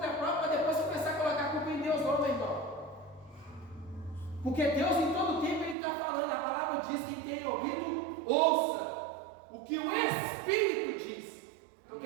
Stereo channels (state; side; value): drops out; left; at 5.8 s